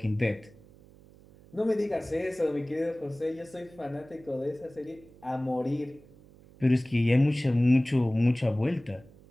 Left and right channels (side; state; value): right; noise; hum, 24 dB below the sound